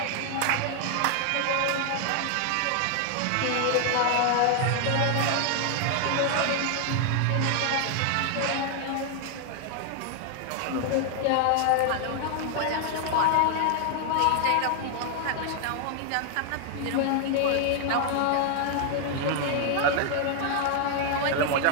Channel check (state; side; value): different; both; correlation 0.00